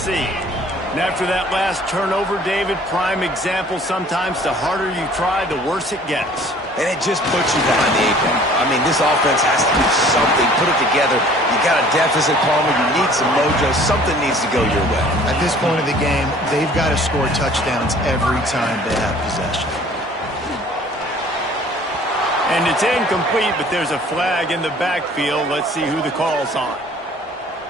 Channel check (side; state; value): both; normal; correlation 0.52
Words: And after that last turnover, David, prime example, sometimes the harder you try, the worse it gets. And it just puts you behind the 8 ball. I mean, this offense has to do something, put it together. You got a deficit, Palmer. You need some mojo. Something needs to go your way. At this point of the game, they've got to score touchdowns every time they have possession. And it's incomplete, but there's a flag in the backfield. Let's see who the call's on.